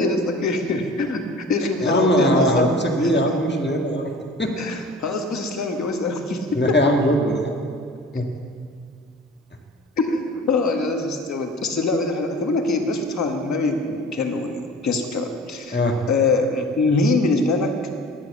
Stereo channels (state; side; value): normal; both; correlation 0.42